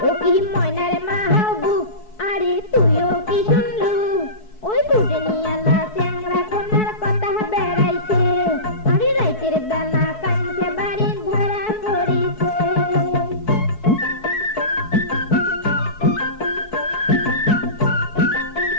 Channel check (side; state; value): right; late; 4.6 ms